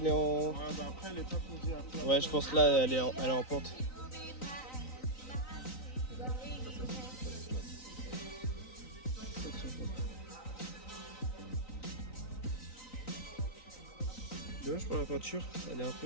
est en. Ouais, bah après, elle est pas posée à plat. Ouais, je pense là, elle est en pente. Dommage pour la peinture, elle est un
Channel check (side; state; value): right; late; 3.9 ms